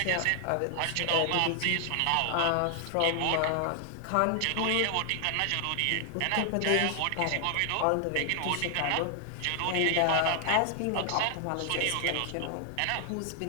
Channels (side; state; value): both; different; correlation 0.00